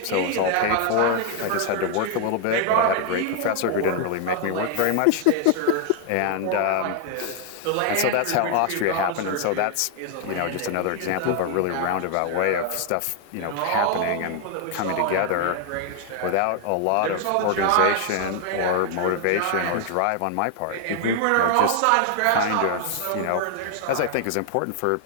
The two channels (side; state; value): both; different; correlation 0.00